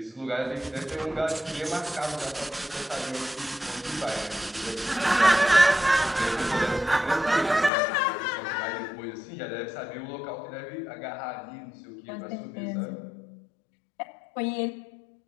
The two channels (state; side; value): drops out; right; at 7.7 s